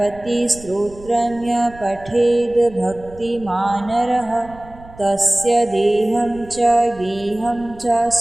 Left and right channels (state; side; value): noise; right; rumble, 20 dB below the sound